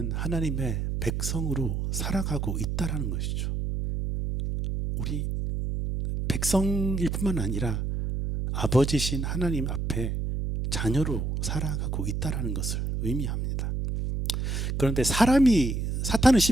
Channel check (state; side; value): noise; right; hum, 1 dB below the sound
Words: 하나님의 백성으로 살아가고 있다라는 것이죠. 우리 백성일 뿐만 아니라 아버지신 하나님 앞에 자녀로 살아가고 있다라는 것을 의미합니다. 그런데 사탄은